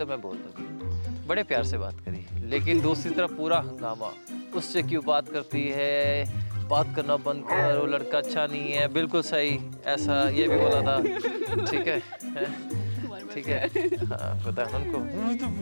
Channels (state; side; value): inverted; both; correlation -1.00